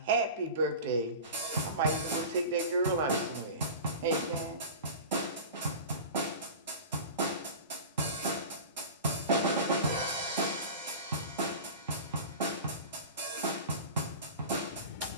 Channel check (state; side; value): inverted; both; correlation -0.33